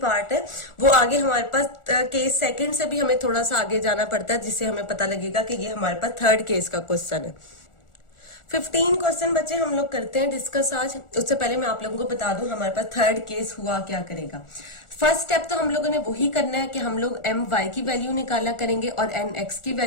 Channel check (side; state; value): right; late; 1.4 ms